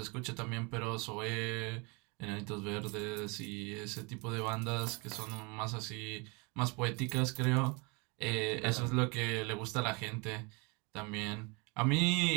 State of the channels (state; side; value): quieter; left; 29.8 dB